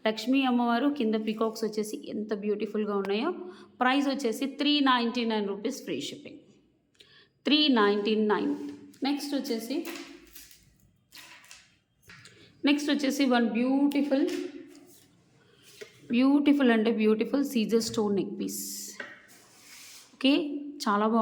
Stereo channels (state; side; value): identical; both; correlation 1.00